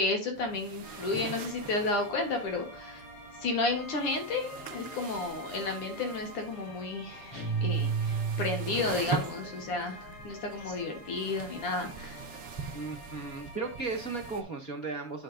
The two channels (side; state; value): right; late; 7.1 ms